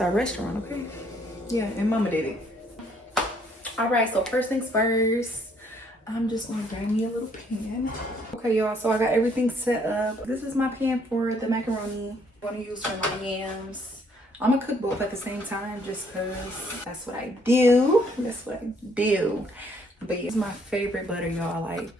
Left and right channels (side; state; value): both; normal; correlation 0.66